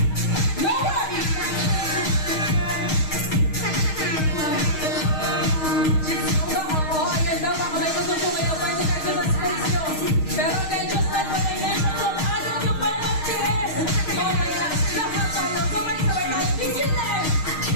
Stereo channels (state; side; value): late; right; 6.4 ms